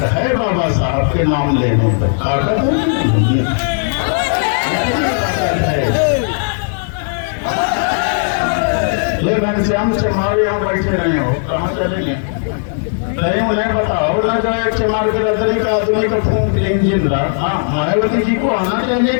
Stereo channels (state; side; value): silent; right; digital silence